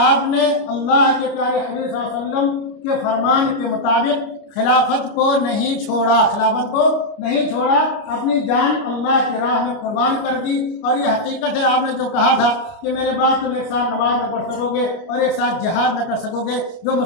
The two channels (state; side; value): late; right; 29 ms